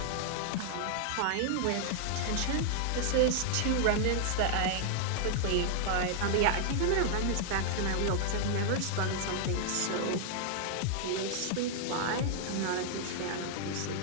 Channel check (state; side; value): different; both; correlation -0.01